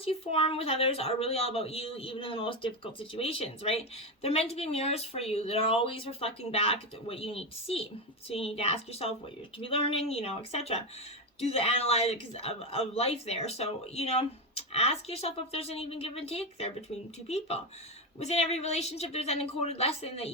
you form with others are really all about you, even in the most difficult situations, right? They're meant to be mirrors for you that are always reflecting back what you need to see. So you need to ask yourself what you're to be learning, etc. Do the analytics of life there. So, ask yourself if there's an even give and take there between two people. Within every relationship, there's an encoded lesson that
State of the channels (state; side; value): normal; both; correlation 0.12